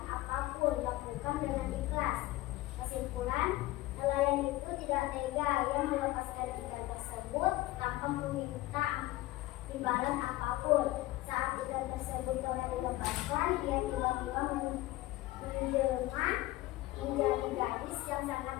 apapun, lakukan dengan ikhlas. Kesimpulan, nelayan itu tidak tega, ia melepaskan ikan tersebut tanpa meminta imbalan apapun. Saat ikan tersebut telah dilepaskan, ia tiba-tiba menjelma menjadi gadis yang sangat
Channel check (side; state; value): right; quieter; 17.6 dB